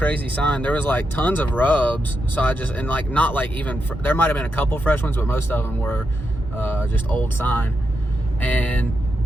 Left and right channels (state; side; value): normal; both; correlation 0.85